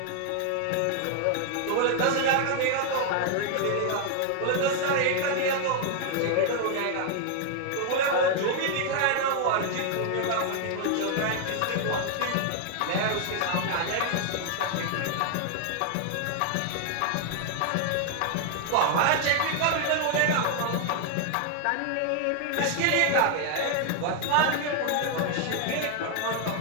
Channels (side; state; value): both; different; correlation 0.00